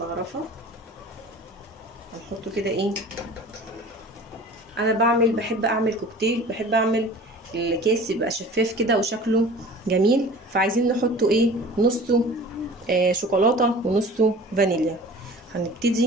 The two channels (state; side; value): normal; both; correlation 0.43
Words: هنحطه كده ايه. انا بحب اعمل كوكتيل، بحب اعمل الكيس يبقى شفاف كده وشكله جميل، فعايزين نحطه ايه نصه شوكولاته ونصه فانيليا.